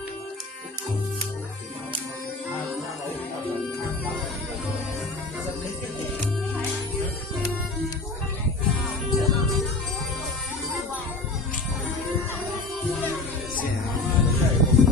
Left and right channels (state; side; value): quieter; right; 3.1 dB